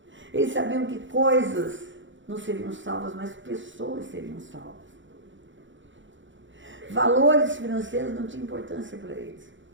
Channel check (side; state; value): left; late; 0.55 ms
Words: Eles sabiam que coisas não seriam salvas, mas pessoas seriam salvas. Valores financeiros não tinham importância para eles.